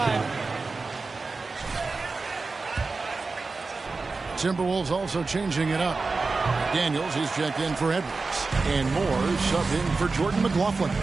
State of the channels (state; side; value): quieter; left; 4.0 dB